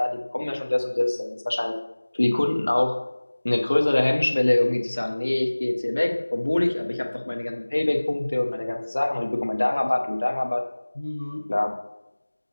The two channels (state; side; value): inverted; both; correlation -1.00